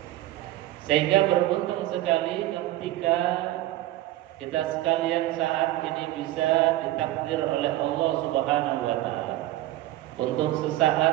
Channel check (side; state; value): left; quieter; 15.6 dB